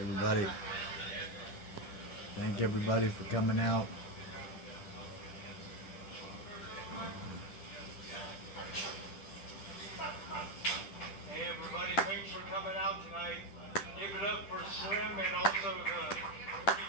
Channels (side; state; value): right; late; 10 ms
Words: everybody. Thank everybody for coming out. Hey everybody, thanks for coming out tonight. Give it up for Slim and also the